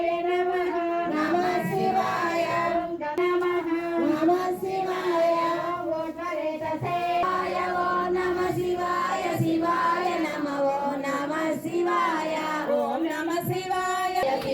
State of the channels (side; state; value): both; identical; correlation 1.00